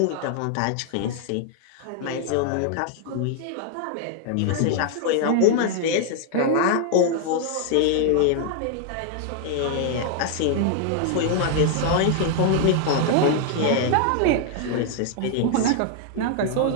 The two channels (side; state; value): both; different; correlation 0.00